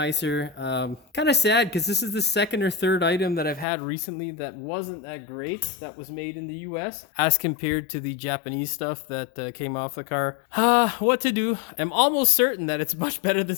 Kind of sad because this is the second or third item that I've had recently that wasn't that great, that was made in the US as compared to the Japanese stuff that came off the car. What to do? I'm almost certain that it's much better than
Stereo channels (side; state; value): right; drops out; at 3.7 s